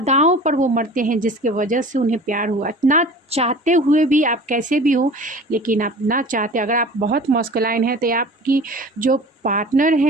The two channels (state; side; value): normal; both; correlation 0.41